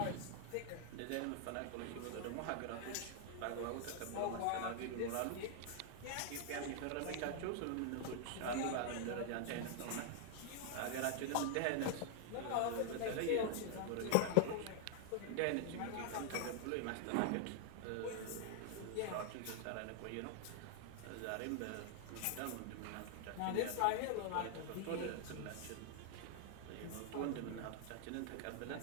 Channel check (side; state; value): both; different; correlation 0.00